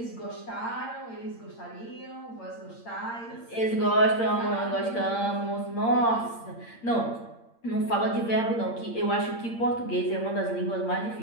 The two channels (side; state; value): right; late; 8.7 ms